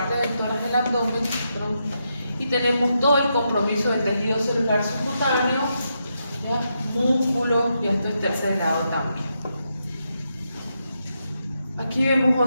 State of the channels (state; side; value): inverted; both; correlation -0.83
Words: del tórax del abdomen, y tenemos todo el compromiso del tejido celular subcutáneo, ¿ya? Músculo, y esto es tercer grado también. Aquí vemos